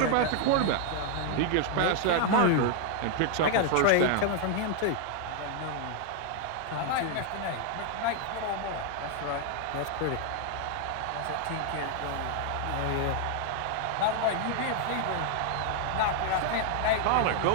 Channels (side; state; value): both; different; correlation 0.00